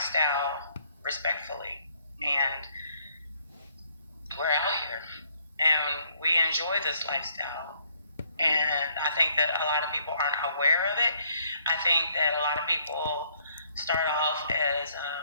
respectfully. And we're out here. And we enjoy this lifestyle. And I think that a lot of people aren't aware of it. I think that a lot of people start off as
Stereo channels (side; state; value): both; inverted; correlation -0.66